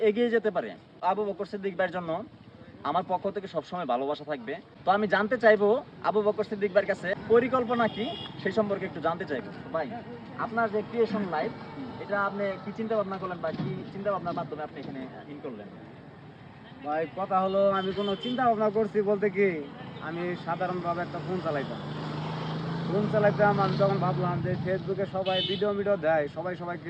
এগিয়ে যেতে পারে। আবু বকর সিদ্দিক ভাইয়ের জন্য আমার পক্ষ থেকে সবসময় ভালোবাসা থাকবে। তো আমি জানতে চাইবো আবু বকর সিদ্দিক ভাইয়ের কাছে পরিকল্পনা কি, সেই সম্পর্কে একটু জানতে চাইবো। ভাই, আপনার যে ক্রিয়েশন লাইফ, এটা আপনি কি চিন্তা ভাবনা করলেন বা কি চিন্তা ভাবনার মাধ্যমে আপনি এখানে ইন করলেন? ভাই কথা হলো আমি কোনো চিন্তা ভাবনা করছি বলতে কি আমি সাধারণভাবে একটা ফোন চালাইতাম। আমি তখন ভাবলাম যে ফেসবুকে সবাই ভিডিও দেয়, সবাইকে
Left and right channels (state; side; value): identical; both; correlation 1.00